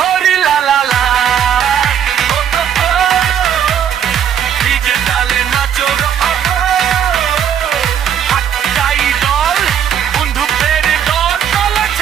লালা লা ডিজে তালে নাচো গো, একটাই দল, বন্ধুদের দল। চলো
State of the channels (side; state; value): left; quieter; 9.0 dB